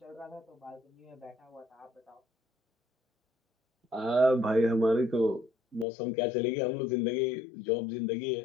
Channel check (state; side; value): drops out; right; at 5.9 s